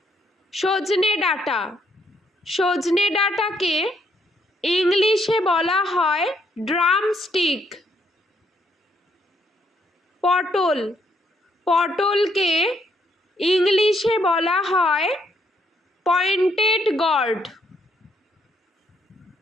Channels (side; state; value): both; normal; correlation 0.72